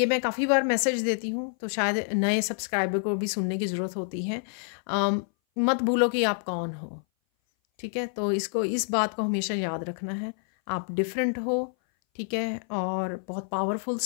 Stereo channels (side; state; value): right; silent; 58 dB below the other